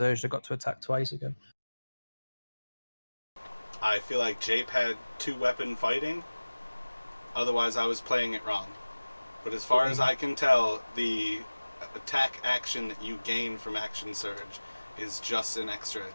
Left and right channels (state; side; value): inverted; both; correlation -1.00